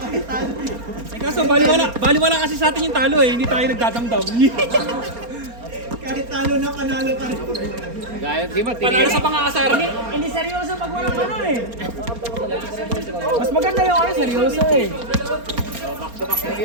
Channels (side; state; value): left; late; 4.3 ms